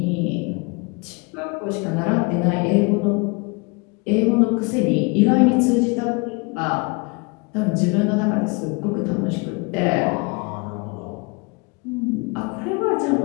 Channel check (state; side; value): quieter; right; 29.6 dB